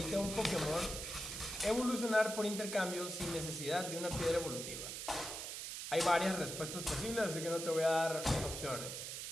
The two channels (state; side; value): noise; right; hiss, 6 dB below the sound